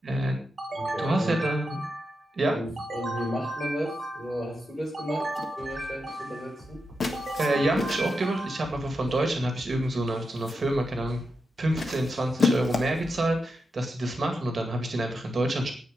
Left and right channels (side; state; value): both; normal; correlation 0.87